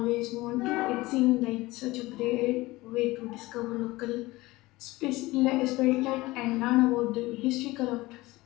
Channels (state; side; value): quieter; right; 20.0 dB